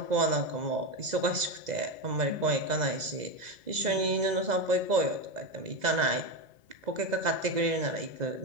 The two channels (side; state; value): left; late; 2.0 ms